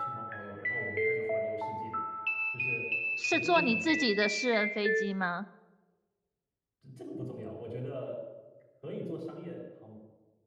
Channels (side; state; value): both; identical; correlation 1.00